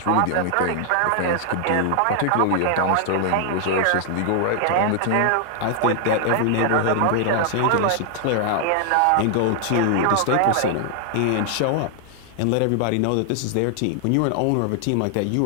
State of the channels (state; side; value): different; both; correlation 0.00